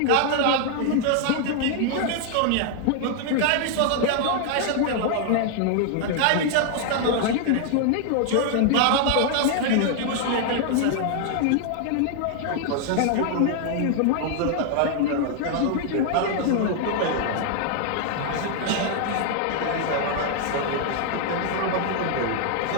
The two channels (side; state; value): both; different; correlation 0.00